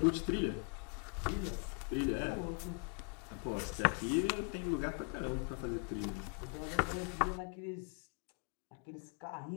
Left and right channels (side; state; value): right; quieter; 37.5 dB